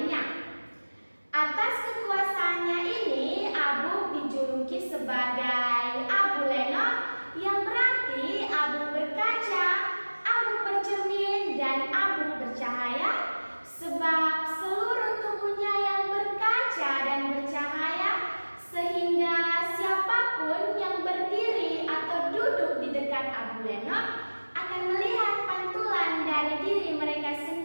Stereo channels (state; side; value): inverted; both; correlation -1.00